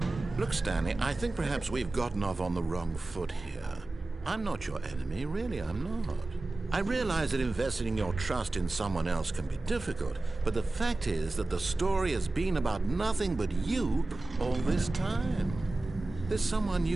Look, Stanley, I think perhaps we've gotten off on the wrong foot here. I'm not your enemy, really, I'm not. I realize that investing your trust in someone else can be difficult, but the fact is that the story has been about nothing but you all this time. There's someone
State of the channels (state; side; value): quieter; left; 3.0 dB